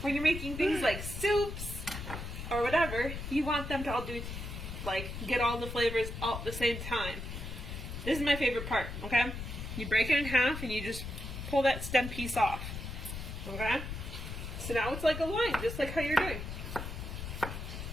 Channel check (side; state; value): left; noise; rumble, 7 dB below the sound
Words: when you're making things like soups or whatever, you want them to all do, like, get all the flavors all at the same time. This is my favorite part, okay? You break it in half and you just pull that stem piece off, okay? So now it's like a line, just like how you're doing.